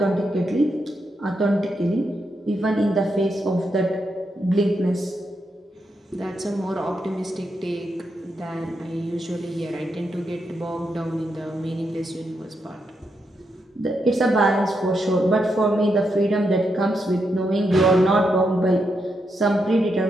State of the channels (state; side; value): normal; both; correlation 0.82